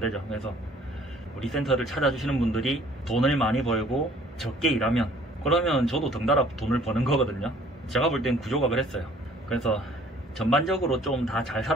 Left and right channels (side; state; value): both; normal; correlation 0.56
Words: 그래서 우리 센터를 찾아주시는 분들이 돈을 많이 벌고 적게 일하면, 그러면 저도 덩달아 돈을 버는 거거든요. 제가 볼 땐 구조가 그랬어요. 그래서 전반적으로 좀 다 잘